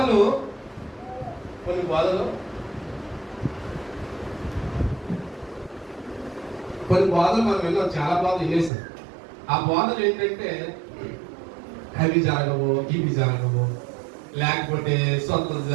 మనం విన్నాం, చాలా బోధలు వినేసాం. ఆ బోధలు ఏంటంటే అవి జరగవు, ఇవి జరగవు, లేకపోతే స్వతంత్రం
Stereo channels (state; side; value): drops out; left; at 8.7 s